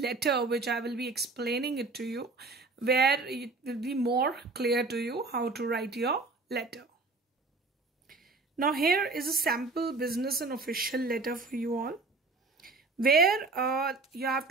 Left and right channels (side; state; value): left; quieter; 3.7 dB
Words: letter, which I will be explaining it to you, where it will be more clear to you how to write your letter. Now here is a sample business and official letter for you all, where you have